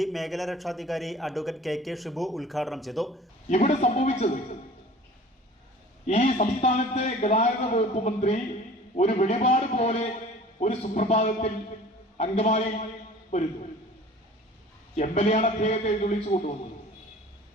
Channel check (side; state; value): both; normal; correlation 0.45